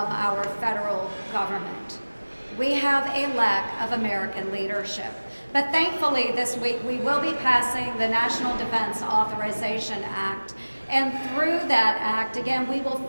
our federal government. We have a lack of American leadership. But thankfully this week we will be passing the National Defense Authorization Act. And through that act, again, we will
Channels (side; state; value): both; inverted; correlation -1.00